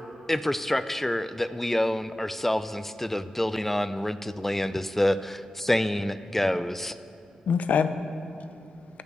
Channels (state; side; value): normal; both; correlation 0.95